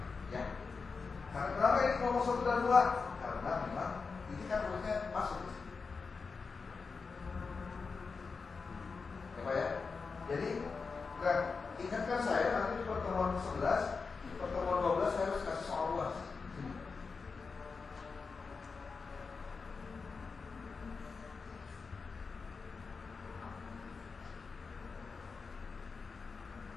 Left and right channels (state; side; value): quieter; right; 4.8 dB